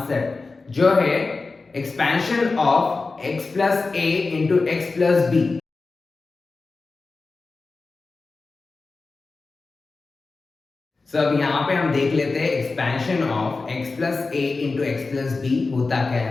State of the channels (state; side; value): quieter; right; 3.9 dB